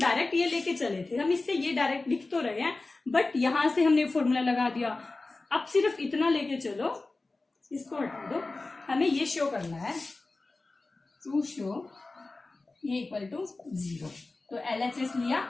ये लेके चले थे, हम इससे ये डायरेक्ट लिख तो रहे हैं, बट यहां से हमने फॉर्मूला लगा दिया। अब सिर्फ इतना लेके चलो, इसको हटा दो, हमें ये शो करना है, टू शो ये इक्वल टू 0, तो LHS लिया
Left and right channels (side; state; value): right; quieter; 3.3 dB